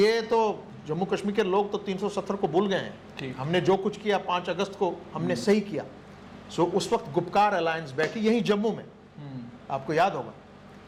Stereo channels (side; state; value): both; identical; correlation 1.00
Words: तो जम्मू कश्मीर के लोग तो 370 को भूल गए हैं, हमने जो कुछ किया 5 अगस्त को हमने सही किया। सो उस वक्त गुपकार अलायंस बैठी यहीं जम्मू में, आपको याद होगा,